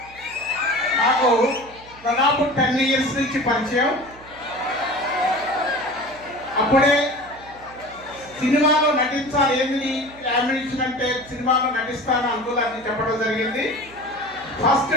నాకు దాదాపు 10 ఇయర్స్ నుంచి పరిచయం. అప్పుడే సినిమాలో నటించాలి, ఏమి యామినేషన్ అంటే సినిమాలో నటిస్తాను అనుకోవాలని చెప్పడం జరిగింది. ఫస్ట్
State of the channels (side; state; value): right; noise; hum, 23 dB below the sound